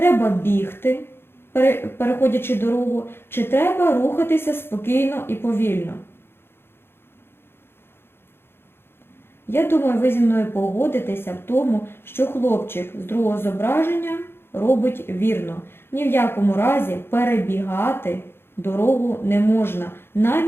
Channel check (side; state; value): right; late; 0.11 ms